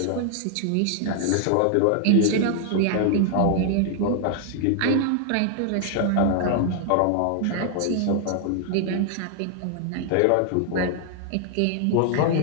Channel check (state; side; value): different; both; correlation 0.00